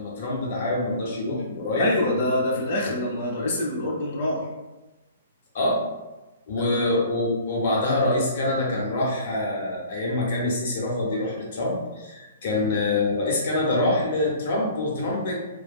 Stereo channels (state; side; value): inverted; both; correlation -0.48